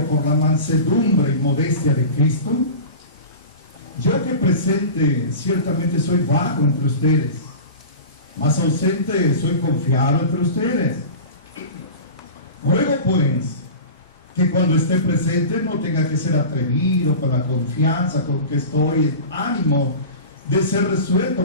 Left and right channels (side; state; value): both; inverted; correlation -0.33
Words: por la mansedumbre y modestia de Cristo, yo que presente ciertamente soy vago entre ustedes, mas ausente soy confiado entre ustedes. Ruego pues que cuando esté presente no tenga que ser atrevido con la confianza con que estoy, en ánimo de ser resuelto